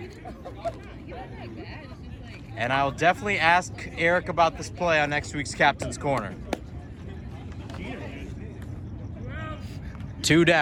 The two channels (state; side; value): identical; both; correlation 1.00